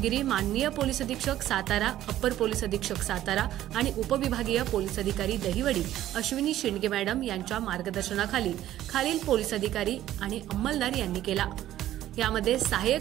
माननीय पोलीस अधीक्षक सातारा, अप्पर पोलीस अधीक्षक सातारा आणि उपविभागीय पोलीस अधिकारी दहिवडी अश्विनी शिंदे मॅडम यांच्या मार्गदर्शनाखाली खालील पोलीस अधिकारी आणि अंमलदार यांनी केला। यामध्ये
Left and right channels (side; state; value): left; quieter; 13.2 dB